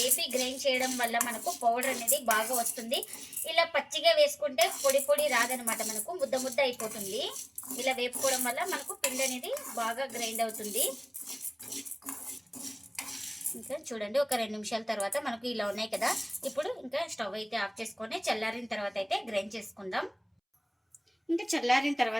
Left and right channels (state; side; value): identical; both; correlation 1.00